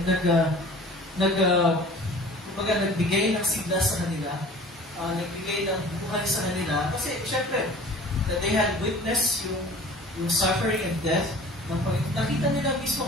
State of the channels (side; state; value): both; normal; correlation 0.44